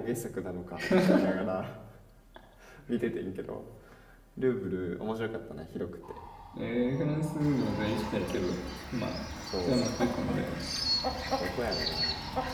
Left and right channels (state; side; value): identical; both; correlation 1.00